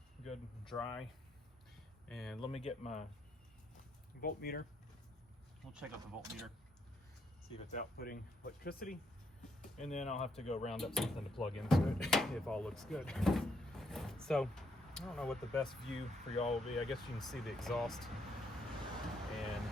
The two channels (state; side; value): normal; both; correlation 0.75